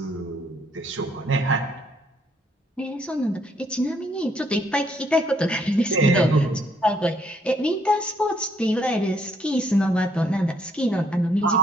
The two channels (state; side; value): normal; both; correlation 0.69